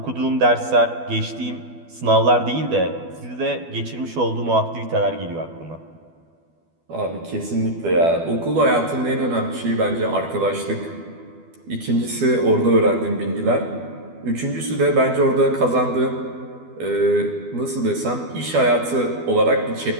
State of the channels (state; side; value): late; left; 12 ms